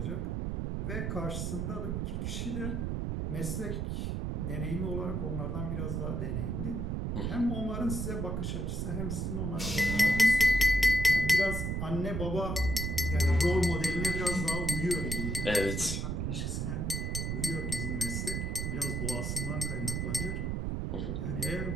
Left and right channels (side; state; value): right; noise; rumble, 1 dB below the sound